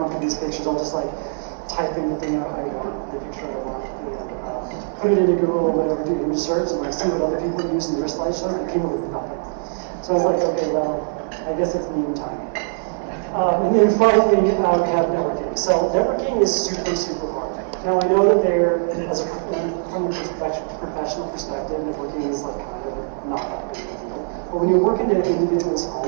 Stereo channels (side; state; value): left; silent; 56 dB below the other